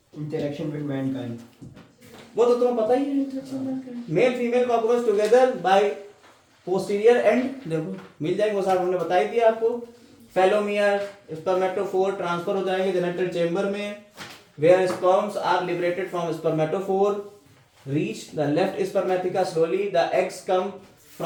इंटरेक्शन विद मैनकाइंड, वो तो तुम्हें पता ही है। Interaction Mankind, male female cockroach together by posterior and, देखो मिल जाएंगे वो साहब, हमने बताई दिया आपको। फेलोमियर, स्पर्मेटोफोर ट्रांसफर हो जाएंगे जेनिटल चेंबर में, where sperms are liberated from spermatophore, reach the left spermatheca slowly, the eggs come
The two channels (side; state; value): both; identical; correlation 1.00